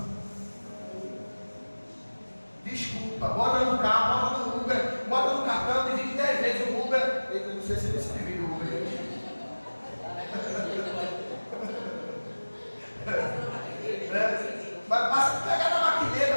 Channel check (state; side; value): inverted; both; correlation -1.00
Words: Desculpa. Bota no carro, bota no Uber, bota no cartão, divide 10 vezes o Uber. Eu não sei se você divide o Uber. Mas passa, pega na